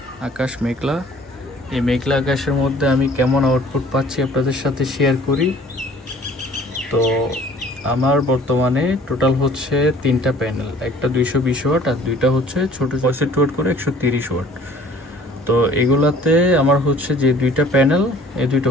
আকাশ মেঘলা। এই মেঘলা আকাশের মধ্যে আমি কেমন আউটপুট পাচ্ছি আপনাদের সাথে শেয়ার করি। তো আমার বর্তমানে টোটাল হচ্ছে 3টা প্যানেল, একটা 220 ওয়াট আর দুইটা হচ্ছে ছোট 65 ওয়াট করে 130 ওয়াট। তো এগুলাতে আমার হচ্ছে যে দুইটা প্যানেল, এই দুইটা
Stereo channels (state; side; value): normal; both; correlation 0.52